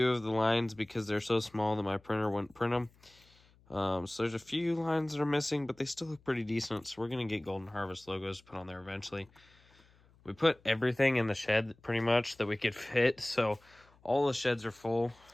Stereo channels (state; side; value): noise; left; hum, 30 dB below the sound